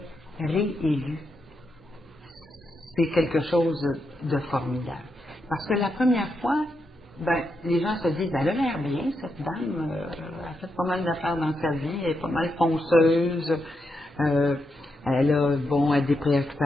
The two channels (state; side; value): normal; both; correlation 0.84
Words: réélu, c'est quelque chose de formidable. Parce que la première fois, ben, les gens se disent, ben, elle a l'air bien, cette dame, elle a fait pas mal d'affaires dans sa vie, elle est pas mal fonceuse, elle a, bon, elle a des